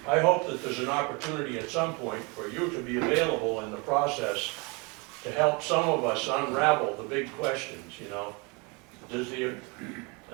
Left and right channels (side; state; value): left; quieter; 29.7 dB